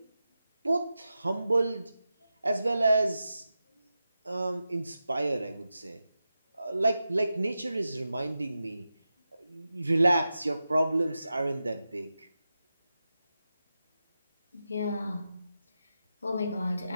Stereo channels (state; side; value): inverted; both; correlation -0.91